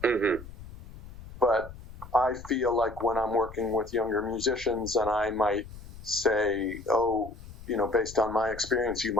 But I feel like when I'm working with younger musicians and I might say, based on my experience, you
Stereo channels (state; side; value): noise; left; rumble, 16 dB below the sound